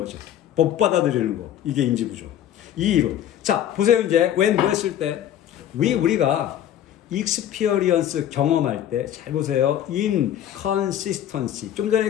못 받아들이는 거. 이게 인지 부조화. 이 이론. 자, 보세요. 이제, when 뭐 했을 때, 우리가 experience 경험할 때, 잘 보세요. inconsistency. 좀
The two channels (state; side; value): quieter; right; 10.9 dB